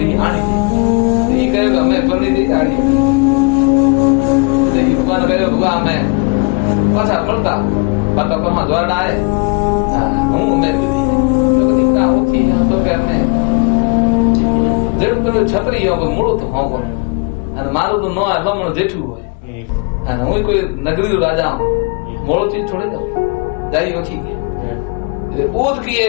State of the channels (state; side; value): quieter; right; 33.5 dB